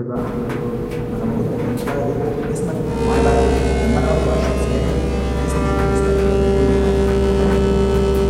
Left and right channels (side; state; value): both; identical; correlation 1.00